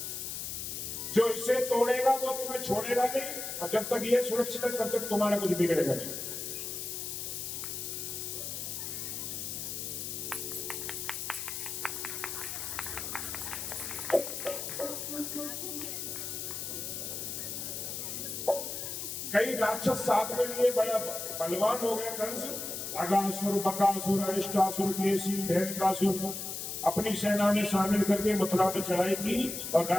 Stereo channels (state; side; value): noise; left; hiss, 5 dB below the sound